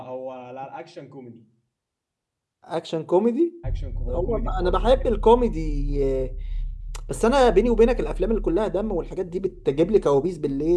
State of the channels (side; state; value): both; identical; correlation 1.00